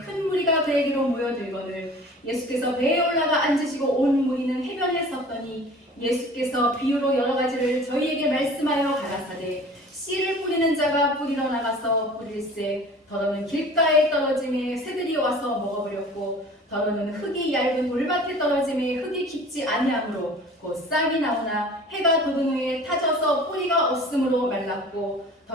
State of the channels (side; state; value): both; normal; correlation 0.44